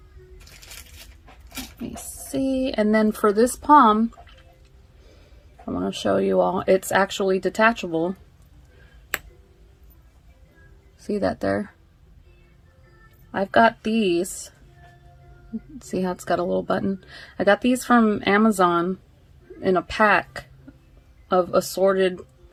Let me see. And then for this pom, I want to show you all, it's actually detachable. See that there? I've got these. See how it's got a little button? I got these from Amazon in a pack of assorted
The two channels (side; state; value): both; identical; correlation 1.00